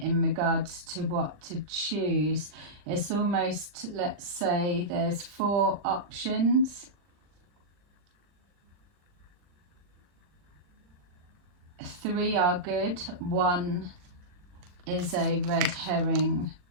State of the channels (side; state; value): left; late; 39 ms